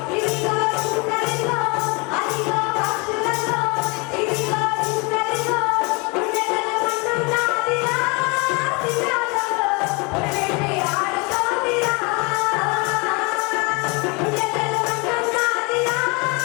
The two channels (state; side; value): quieter; right; 29.6 dB